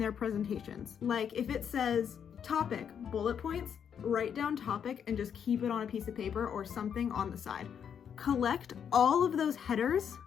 presentations. Like if it says topic, bullet points, write down topic and just keep it on a piece of paper or something on the side. Collect all of those headers,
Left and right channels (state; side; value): quieter; right; 7.9 dB